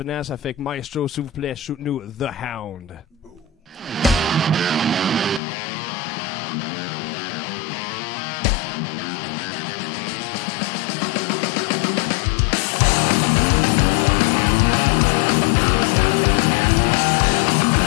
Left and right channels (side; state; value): right; drops out; at 5.4 s